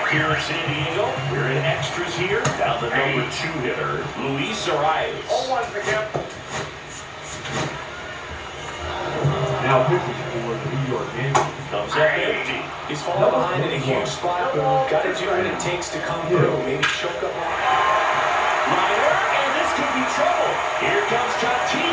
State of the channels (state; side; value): identical; both; correlation 1.00